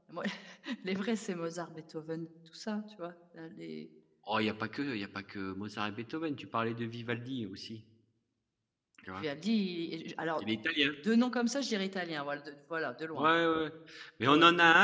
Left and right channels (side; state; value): both; identical; correlation 1.00